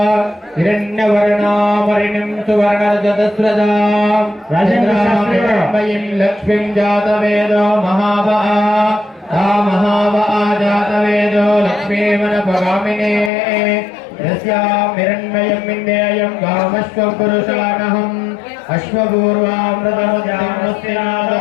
ಹಿರಣ್ಯವರ್ಣಾಮರಿಣಿಂ ಸುವರ್ಣರಜತಸ್ರಜಾಂ ರಾಜೇಂದ್ರಮಯಿಂ ಲಕ್ಷ್ಮೀಂ ಜಾತವೇದೋ ಮಹಾವಹ ತಾ ಮಹಾವಹ ಜಾತವೇದೋ ಲಕ್ಷ್ಮೀಮನಪಗಾಮಿನೇ ಯಸ್ಯಾಂ ಹಿರಣ್ಮಯಂ ವಿಂದೇಯಂ ಗಾಮಶ್ವಂ ಪುರುಷಾನಹಂ ಅಶ್ವಪೂರ್ವಾಮೃತಮುದ್ಯಾಮಸ್ಯಾದ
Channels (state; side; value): drops out; right; at 13.3 s